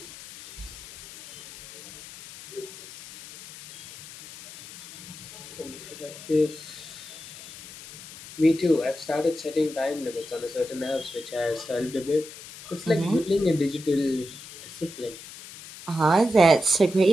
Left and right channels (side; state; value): left; noise; hiss, 15 dB below the sound